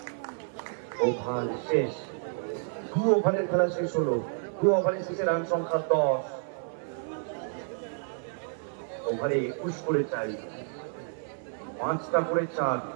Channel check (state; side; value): silent; left; 58 dB below the other